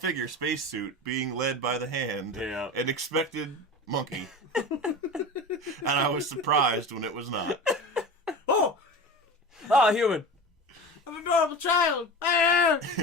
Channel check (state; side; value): normal; both; correlation 0.30